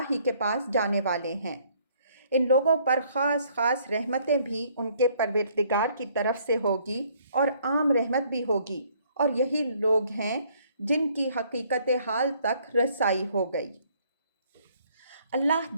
ہی کے پاس جانے والے ہیں۔ ان لوگوں پر خاص خاص رحمتیں بھی ان کے پروردگار کی طرف سے ہوگی اور عام رحمت بھی ہوگی، اور یہی لوگ ہیں جن کی حقیقت حال تک رسائی ہو گئی۔ اللہ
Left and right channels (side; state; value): both; inverted; correlation -0.63